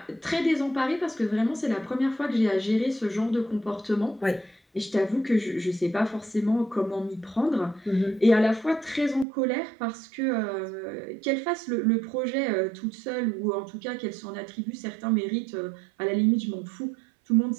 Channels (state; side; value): drops out; left; at 9.2 s